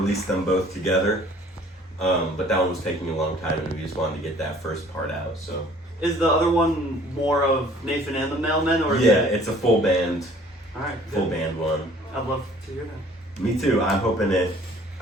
them both together, but that one was taking a long time, and we just wanted to get that first part out. So Is the other one more of Nathan and the Mailmen, or is yeah, it? it's a full band All right. full Good. band one. I'd love to hear that. Me too. I'm hoping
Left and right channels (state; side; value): normal; both; correlation 0.53